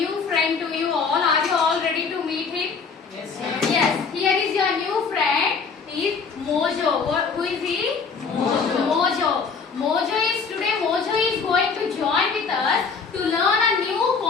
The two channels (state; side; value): quieter; right; 5.3 dB